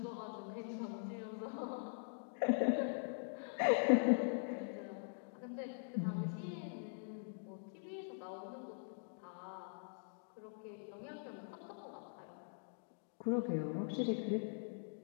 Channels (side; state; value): right; silent; digital silence